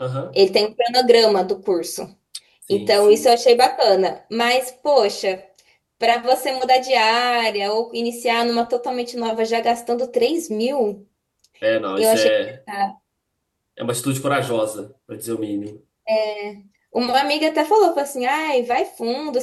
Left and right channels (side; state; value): both; identical; correlation 1.00